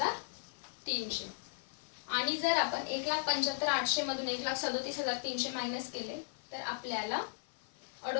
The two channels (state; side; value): silent; right; 53 dB below the other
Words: आणि जर आपण 1,75,800 मधून 1,37,300 मायनस केले तर आपल्याला